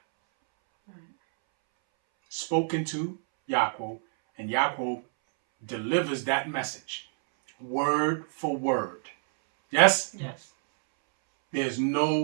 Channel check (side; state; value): left; silent; 60 dB below the other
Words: Spoken to Yaakov, and Yaakov delivers that message word for word. Yes? Yes. There's